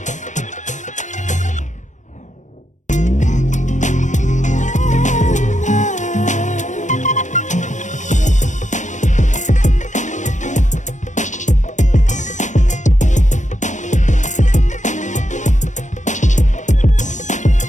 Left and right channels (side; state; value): right; late; 0.35 ms